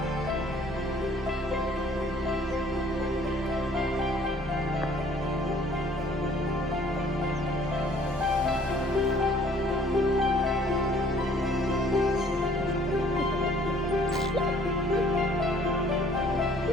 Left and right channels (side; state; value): both; normal; correlation 0.57